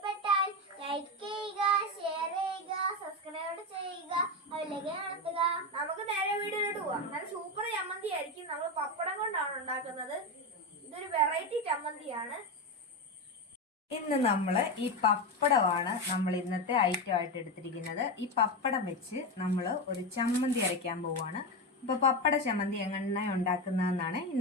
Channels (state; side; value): normal; both; correlation 0.15